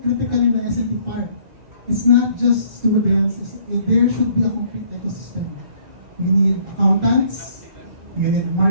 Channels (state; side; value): late; left; 2.0 ms